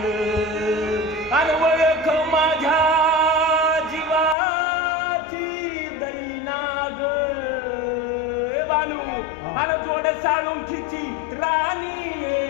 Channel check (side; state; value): right; drops out; at 4.4 s